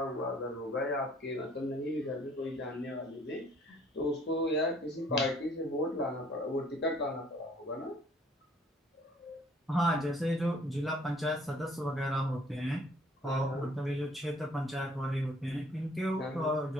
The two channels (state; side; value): normal; both; correlation 0.59